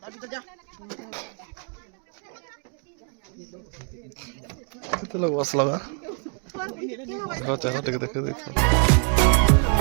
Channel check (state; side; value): quieter; left; 38.4 dB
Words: अभी तो जा कितने लोग बस लगा देखो चेहरा देख देख देखो